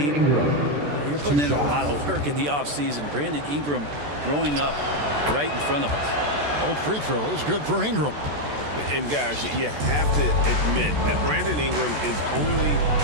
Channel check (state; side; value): late; left; 14 ms